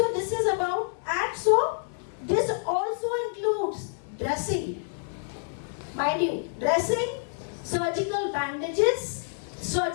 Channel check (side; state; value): right; silent; digital silence